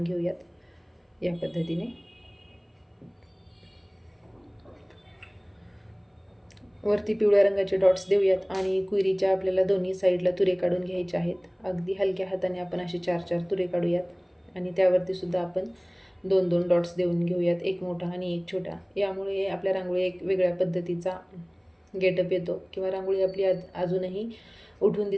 घेऊयात या पद्धतीने. वरती पिवळ्या रंगाचे डॉट्स देऊयात आणि क्वेरीच्या आपल्याला दोन्ही साईडला तुरे काढून घ्यायचे आहेत. अगदी हलक्या हाताने आपण असे 4-4 तुरे काढूयात आणि त्यावरती सुद्धा आपण 2-2 डॉट्स देऊन घेऊयात, एक मोठा आणि एक छोटा. यामुळे आपल्या रांगोळी एक वेगळ्या पद्धतीचा गेटअप येतो किंवा रांगोळी आपली अजूनही उठून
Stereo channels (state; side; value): identical; both; correlation 1.00